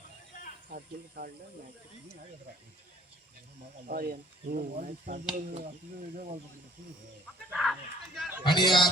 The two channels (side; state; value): both; normal; correlation 0.55